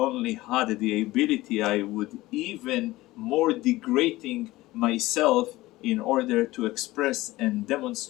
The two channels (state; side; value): quieter; right; 18.3 dB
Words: had the ability, I would even more degrading myself in order to express and